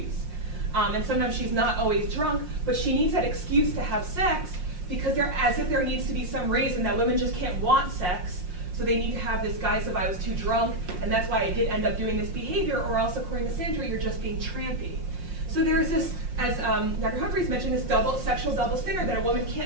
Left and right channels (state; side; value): late; left; 5.6 ms